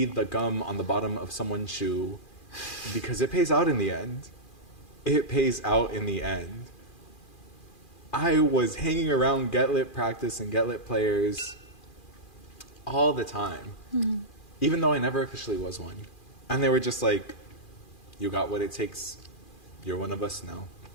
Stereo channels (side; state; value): right; late; 2.4 ms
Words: the gum on the bottom of someone's shoe, because it pays out in the end. It pays out in the end. I was hanging around Get Lit practice and Get Lit players all the time, even though I never officially was one. And they were just like, you got what it takes. You're one of us now.